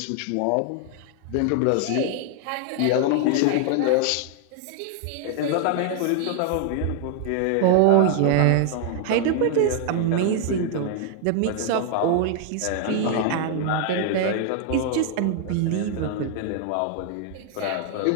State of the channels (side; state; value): both; different; correlation 0.00